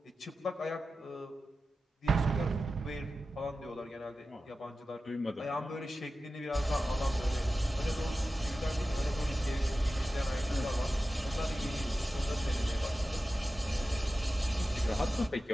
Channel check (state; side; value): normal; both; correlation 0.94